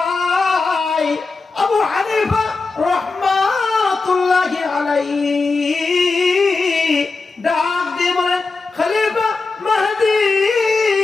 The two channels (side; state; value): right; quieter; 4.0 dB